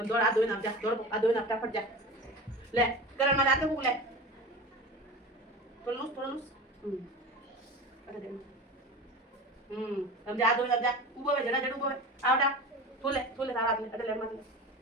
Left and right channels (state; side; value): normal; both; correlation 0.32